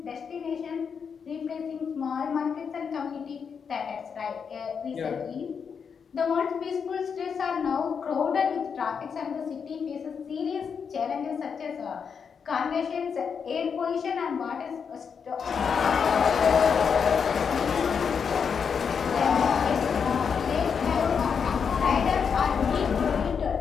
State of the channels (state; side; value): quieter; right; 6.5 dB